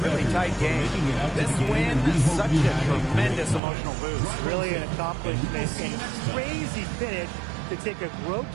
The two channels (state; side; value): drops out; left; at 3.6 s